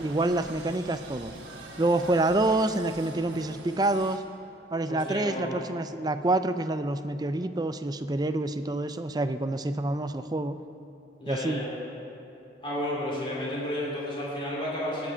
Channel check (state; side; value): normal; both; correlation 0.60